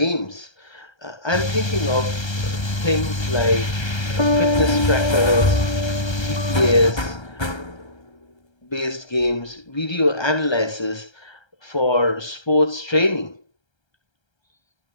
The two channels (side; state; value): right; late; 1.3 ms